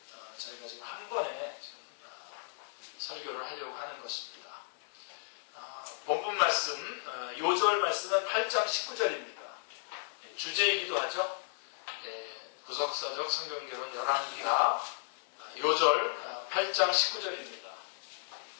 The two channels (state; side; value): silent; right; 55 dB below the other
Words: 저희가 지금 한 번에 설교를 하려고 하는 것입니다. 본문 말씀, 요절 말씀은 8장 19절입니다. 주제이기도 하죠. 구속사적 성경개론 열왕기하 요절 8장 19절입니다.